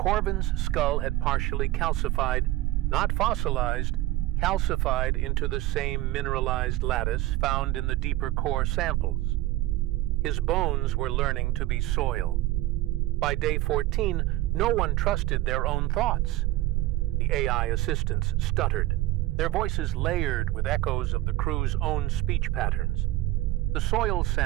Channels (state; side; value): quieter; left; 16.7 dB